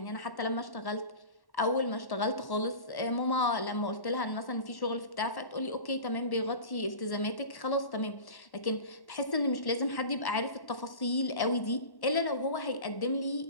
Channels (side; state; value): right; late; 1.1 ms